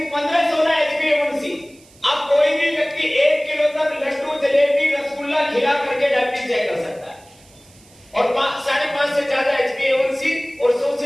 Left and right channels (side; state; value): right; noise; hiss, 27 dB below the sound